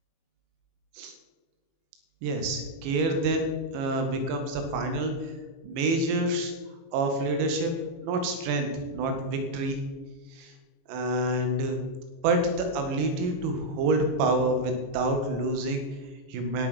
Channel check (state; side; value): late; left; 21 ms